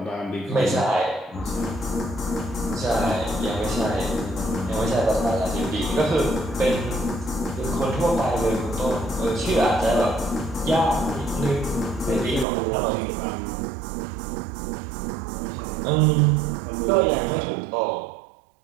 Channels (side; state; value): left; drops out; at 12.5 s